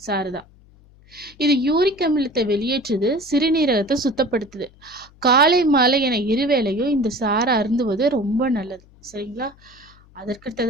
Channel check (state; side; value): noise; left; hum, 27 dB below the sound